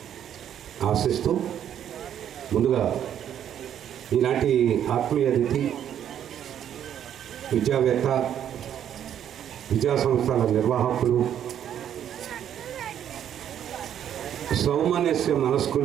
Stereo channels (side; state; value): left; quieter; 9.9 dB